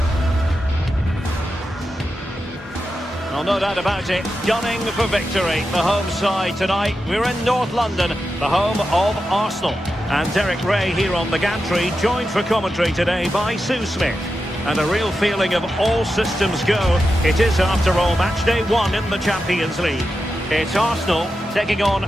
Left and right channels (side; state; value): both; normal; correlation 0.89